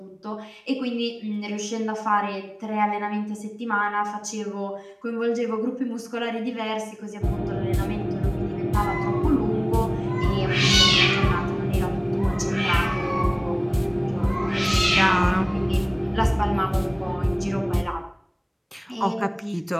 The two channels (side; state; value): both; identical; correlation 1.00